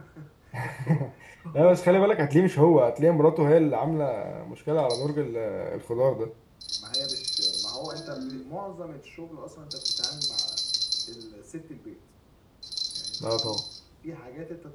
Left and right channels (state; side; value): identical; both; correlation 1.00